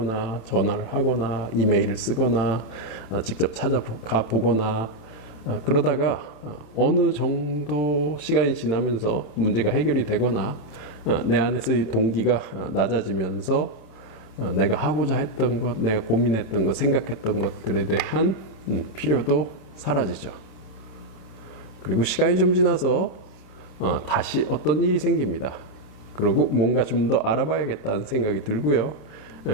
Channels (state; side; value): late; right; 27 ms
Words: 전화를 하거나 이메일을 쓰거나 직접 찾아가 보거나 그러다가 어느 정도 시간이 지나면서 문제가 해결이 되거나 내 안에서의 동기가 낮아지면서 내가 하고자 했던 것, 내가 고민했던 것, 생각했던 것들에 대한 필요도 사라지죠. 그리고 시간이 좀 지나서 다시 어떤 일이 생깁니다. 그리고 뭔가 좀 더 알아봐야겠다는 생각이 들고요.